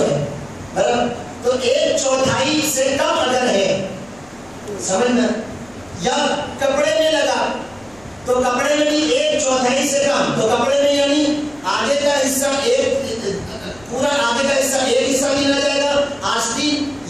ہے برابر. تو 1/4 سے کم اگر ہے سمجھنا یا کپڑے میں لگا تو کپڑے میں بھی 1/4 سے کم تو کپڑے میں یعنی آگے کا حصہ ایک پورا آگے کا حصہ ایک حصہ ملا جائے گا، آستین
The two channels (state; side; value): noise; left; rumble, 27 dB below the sound